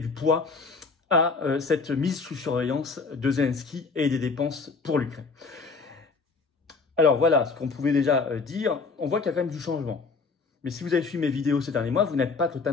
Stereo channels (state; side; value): quieter; right; 4.4 dB